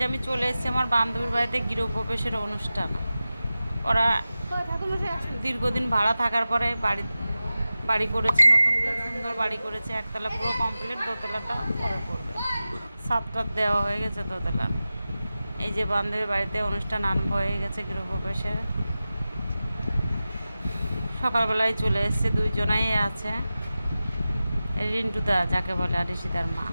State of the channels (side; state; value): both; inverted; correlation -0.95